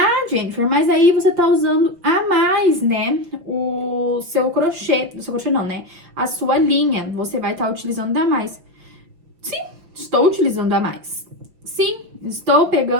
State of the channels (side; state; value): left; late; 5.8 ms